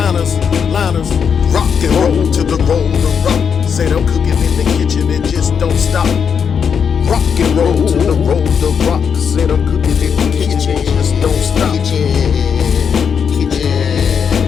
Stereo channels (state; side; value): quieter; right; 6.9 dB